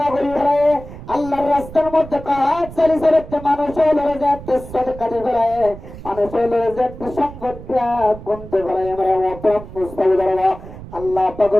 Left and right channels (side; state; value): right; noise; rumble, 14 dB below the sound